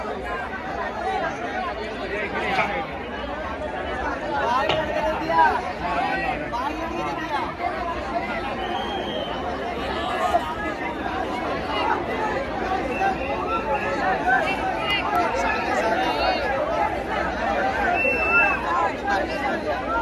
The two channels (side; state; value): both; identical; correlation 1.00